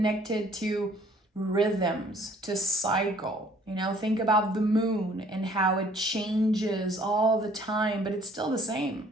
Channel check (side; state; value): both; normal; correlation 0.58